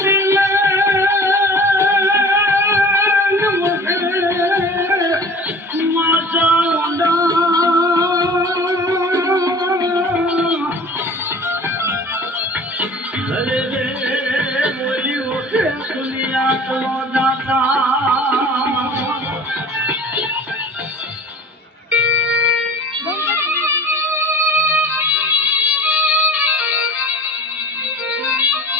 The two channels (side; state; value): both; normal; correlation 0.43